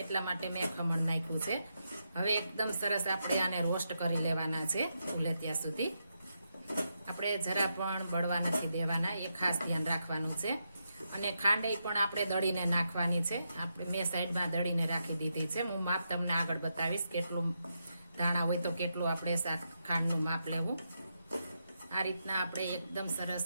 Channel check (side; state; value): both; inverted; correlation -0.83